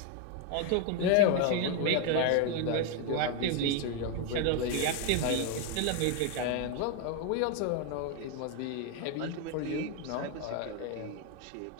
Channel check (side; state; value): both; different; correlation 0.01